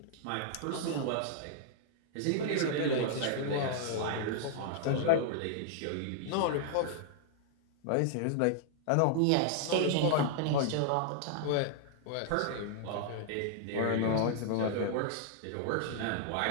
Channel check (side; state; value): both; different; correlation 0.00